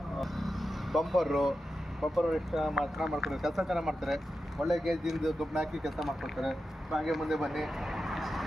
ಬಂಪರು ಎಷ್ಟು ಚೆನ್ನಾಗಿ ಮಾಡ್ಕೊಡ್ತಾರೆ, ಕೆಲಸ ಚೆನ್ನಾಗಿ ಮಾಡ್ತಾರೆ. ಒಳ್ಳೆ ಗೇಜಿಂದು ಗೊಬ್ಬರ ಹಾಕಿ ಕೆಲಸ ಮಾಡ್ಕೊಡ್ತಾರೆ. ಹಾಗೆ ಮುಂದೆ ಬನ್ನಿ.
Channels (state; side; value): normal; both; correlation 0.90